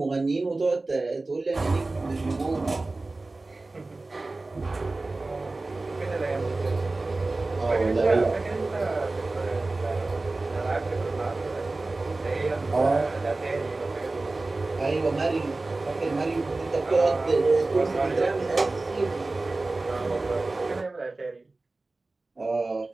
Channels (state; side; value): quieter; left; 3.2 dB